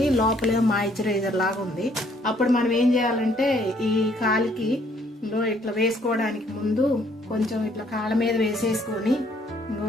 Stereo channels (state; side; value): normal; both; correlation 0.65